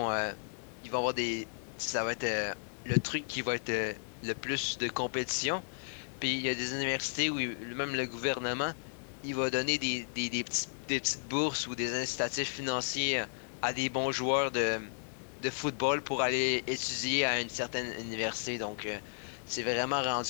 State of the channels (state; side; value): silent; right; digital silence